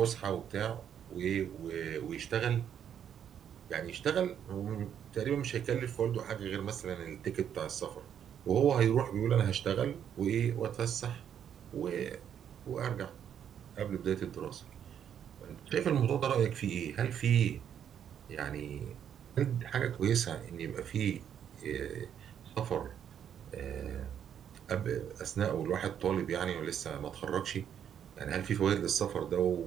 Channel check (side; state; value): left; quieter; 9.0 dB